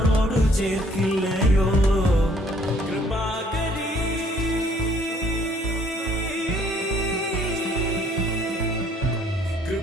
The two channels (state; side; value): normal; both; correlation 0.61